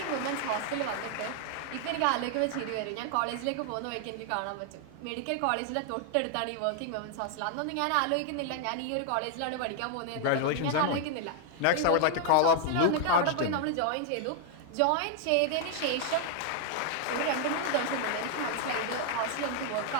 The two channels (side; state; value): both; different; correlation 0.00